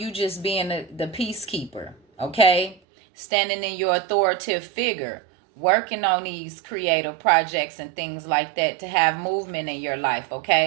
just being the peacekeeper, okay, standing in your authoritative figure, working on these creative projects and things like that to have movement in your life.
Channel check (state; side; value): drops out; left; at 2.8 s